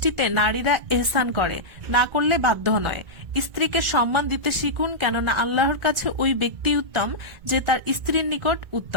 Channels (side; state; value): left; late; 1.4 ms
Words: নারীরা এহসান করে, না করলে বাধ্য নয়। স্ত্রীকে সম্মান দিতে শিখুন, কেননা আল্লাহর কাছে ওই ব্যক্তি উত্তম যে তার স্ত্রীর নিকট